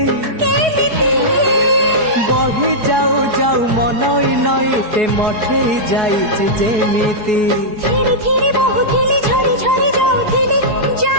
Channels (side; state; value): left; late; 4.7 ms